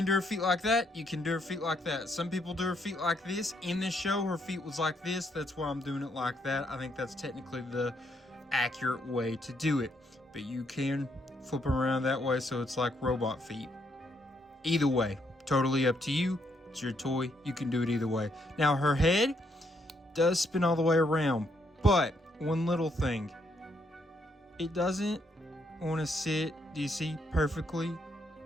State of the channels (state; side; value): normal; both; correlation 0.74